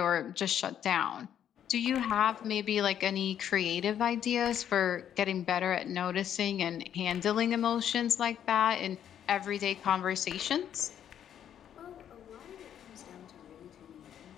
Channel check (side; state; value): right; quieter; 9.7 dB